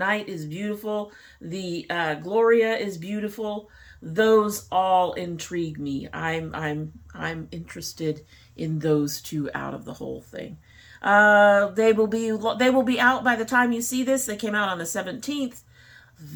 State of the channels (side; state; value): both; identical; correlation 1.00